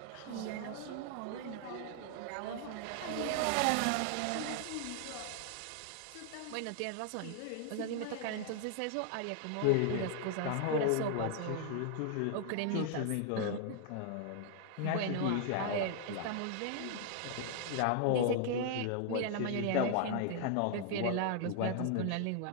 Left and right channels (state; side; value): different; both; correlation 0.00